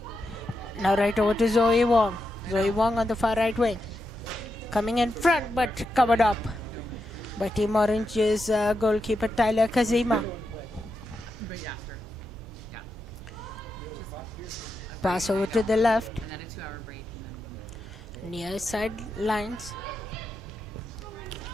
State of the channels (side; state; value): both; normal; correlation 0.86